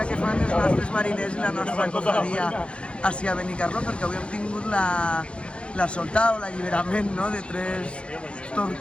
que fan els nostres mariners i la nostra cofradia així a Benicarló, perquè avui hem tingut la soltada o l'alliberament de 3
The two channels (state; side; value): late; right; 0.058 ms